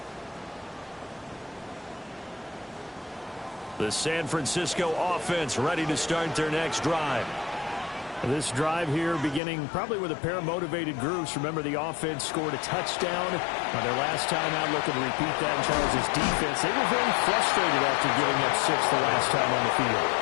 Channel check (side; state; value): right; drops out; at 9.4 s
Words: The San Francisco offense ready to start their next drive. This drive here beginning probably with a pair of motivated groups. Remember, the offense scored a touchdown on their last time out. Looking to repeat that in Charles' defense. They were very frustrated after giving up 6 the last time on the field.